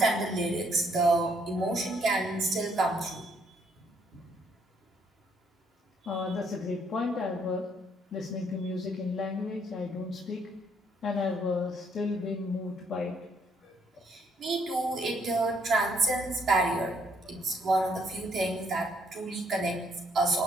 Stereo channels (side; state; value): both; normal; correlation 0.69